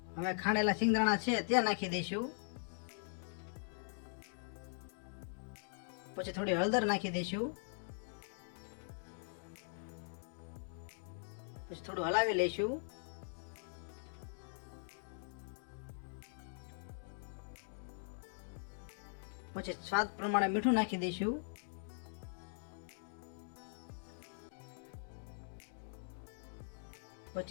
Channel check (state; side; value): silent; right; digital silence